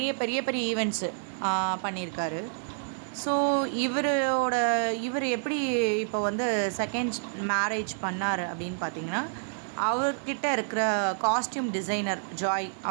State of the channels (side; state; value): left; silent; digital silence